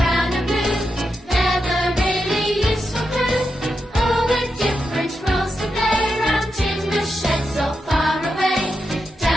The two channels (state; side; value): normal; both; correlation 0.87